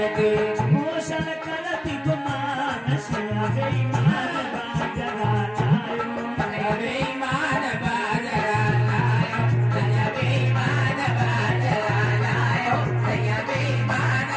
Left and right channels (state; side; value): identical; both; correlation 1.00